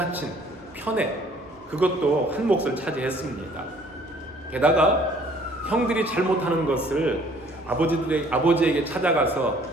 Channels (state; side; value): normal; both; correlation 0.57